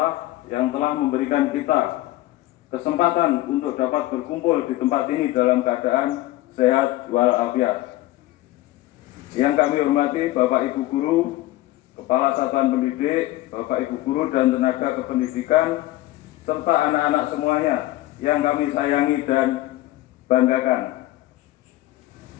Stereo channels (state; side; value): quieter; right; 16.8 dB